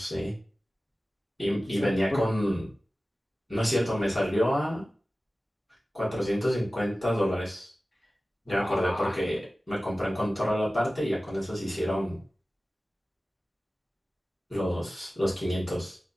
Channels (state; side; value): normal; both; correlation 0.96